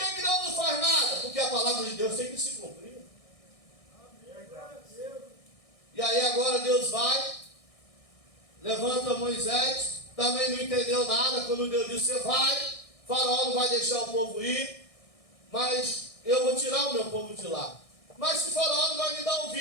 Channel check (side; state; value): right; late; 1.6 ms